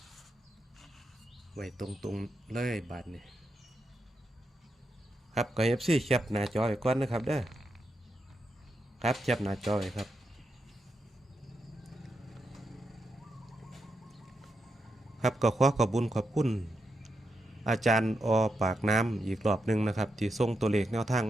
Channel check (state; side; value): normal; both; correlation 0.85